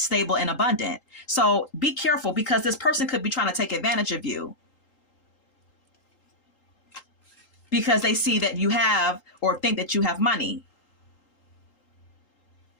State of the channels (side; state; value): right; late; 3.8 ms